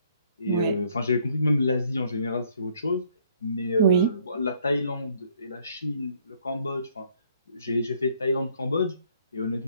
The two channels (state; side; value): inverted; both; correlation -0.64